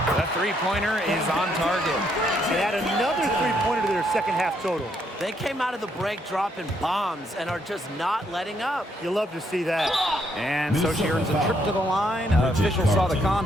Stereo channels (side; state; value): both; normal; correlation 0.73